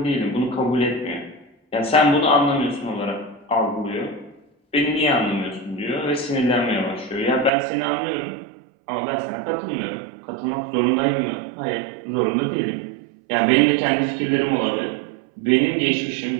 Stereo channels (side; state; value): left; drops out; at 7.5 s